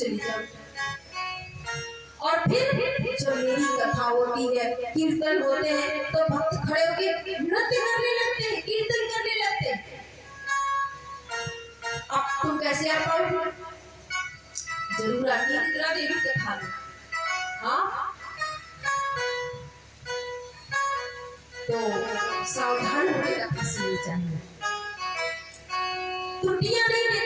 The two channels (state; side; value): identical; both; correlation 1.00